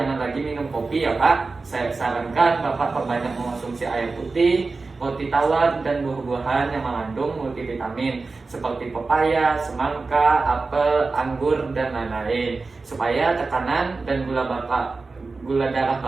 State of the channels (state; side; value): quieter; left; 3.9 dB